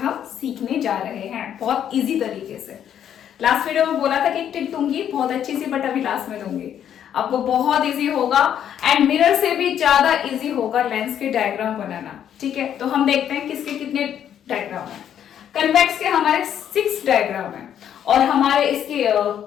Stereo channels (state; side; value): quieter; right; 9.6 dB